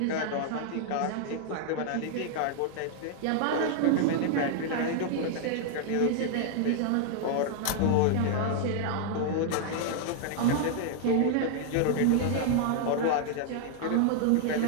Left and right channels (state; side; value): different; both; correlation 0.00